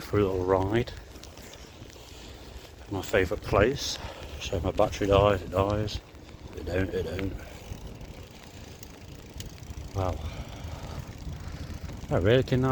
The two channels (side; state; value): both; identical; correlation 1.00